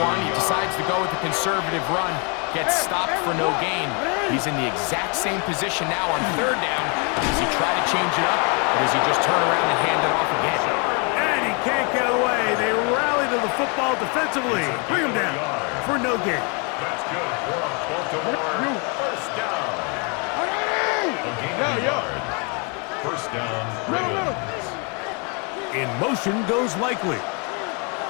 1. He decides to go with a conservative run. Gets stopped for no gain. He's in the exact same position now on 3rd down. Does he try to change it up, or does he just turn around and hand it off again? And he can't get away. They rally to the football defensively. Bring him down for no gain. That's good for Baltimore. 1st down. A gain of a yard. 1st down. Ravens. In motion goes Likely.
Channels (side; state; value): right; quieter; 34.6 dB